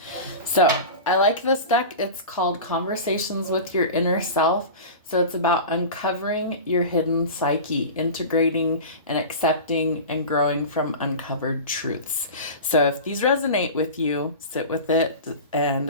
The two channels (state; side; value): inverted; both; correlation -0.31